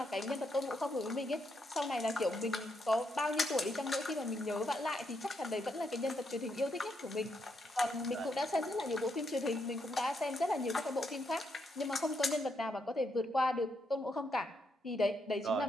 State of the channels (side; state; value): both; normal; correlation 0.79